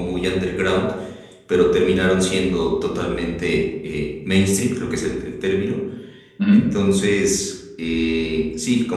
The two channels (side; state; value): both; identical; correlation 1.00